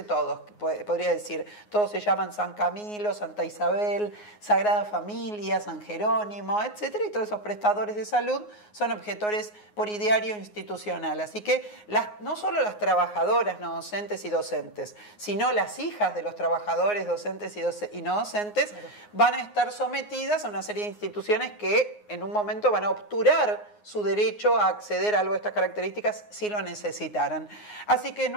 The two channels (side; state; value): right; late; 9.6 ms